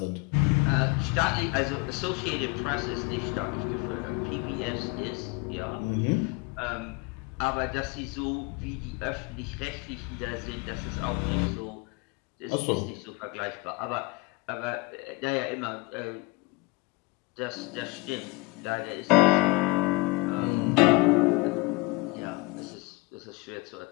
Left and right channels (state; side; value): quieter; right; 24.6 dB